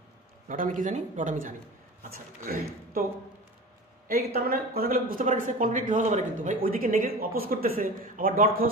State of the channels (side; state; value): both; normal; correlation 0.34